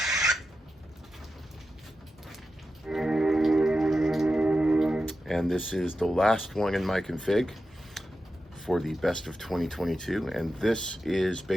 And this is the last one in my config for the best of 2022, and this is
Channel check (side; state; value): both; normal; correlation 0.90